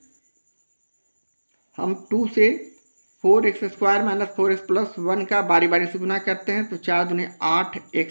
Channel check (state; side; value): inverted; both; correlation -1.00